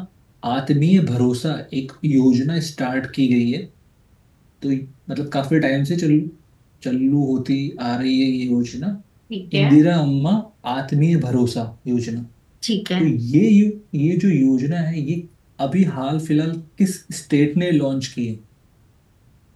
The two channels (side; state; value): both; identical; correlation 1.00